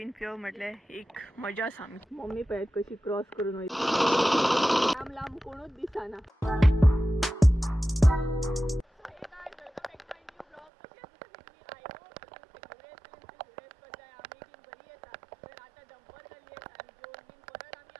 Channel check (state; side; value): drops out; left; at 10.7 s